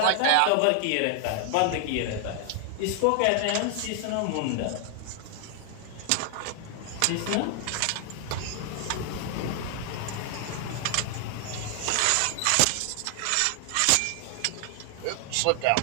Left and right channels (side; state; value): both; different; correlation 0.00